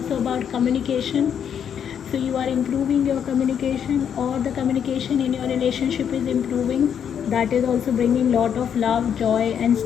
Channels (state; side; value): quieter; right; 8.3 dB